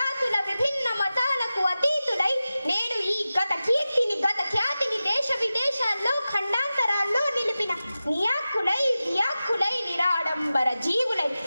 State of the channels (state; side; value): inverted; both; correlation -0.95